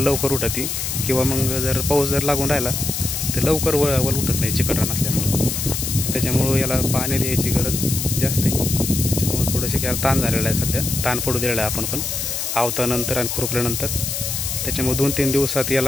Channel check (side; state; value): left; noise; hiss, 3 dB below the sound